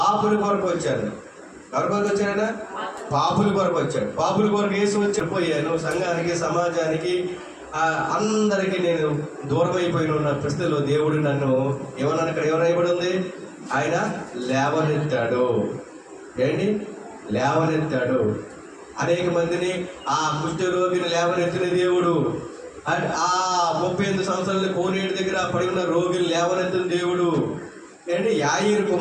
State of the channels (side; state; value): both; identical; correlation 1.00